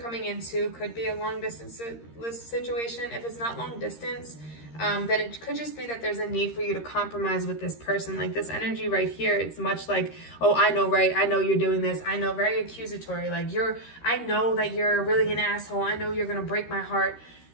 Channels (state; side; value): late; right; 13 ms